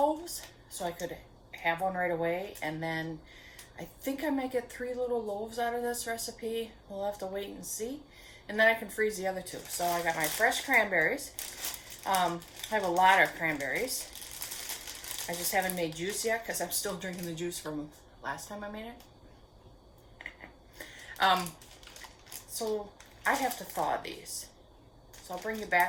so I could have one right away. And then I think I might get 3 little loaves out of this recipe. We'll have to wait and see. And then I can freeze the other 2. So I got my fresh cranberries. I have a lot of cranberries. I just haven't made juice yet because I'm still drinking the juice from last time I made it. So I have to thaw these. So I'll bring you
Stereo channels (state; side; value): identical; both; correlation 1.00